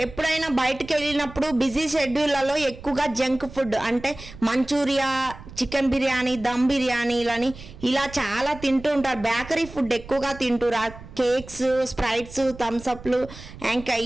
ఎప్పుడైనా బయటకు వెళ్ళినప్పుడు బిజీ షెడ్యూళ్లలో ఎక్కువగా జంక్ ఫుడ్ అంటే మంచూరియా, చికెన్ బిర్యానీ, దమ్ బిర్యానీలని ఇలా చాలా తింటూ ఉంటారు. బేకరీ ఫుడ్ ఎక్కువగా తింటున్నారు. కేక్స్, స్ప్రైట్స్, థమ్స్అప్లు, ఇంకా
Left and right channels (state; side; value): noise; right; rumble, 16 dB below the sound